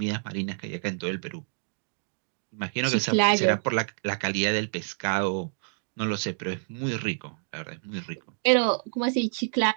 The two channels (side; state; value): left; silent; digital silence